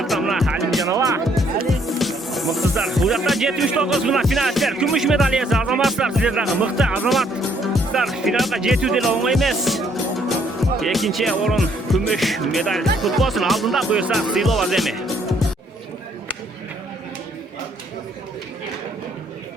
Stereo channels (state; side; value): normal; both; correlation 0.67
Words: mına Halimjanova. Mıhtısızlar. Bu yakta 79 mına finalistler. Kümüş medal iyesi azamazlar sizlerden. Mıhtı azamazlar. Finalga жетүү деле оңой эмес. Экинчи орун күмүш медаль futbolsun алдында буюрса сыйлоо аземи.